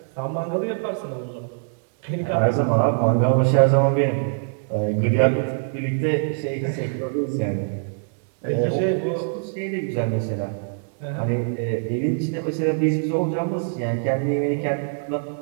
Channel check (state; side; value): silent; left; 63 dB below the other